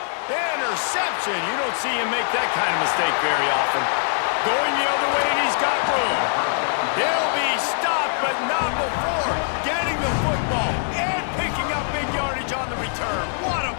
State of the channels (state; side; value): silent; right; digital silence